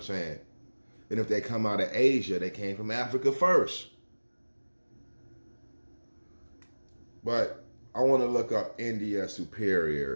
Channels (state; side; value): inverted; both; correlation -1.00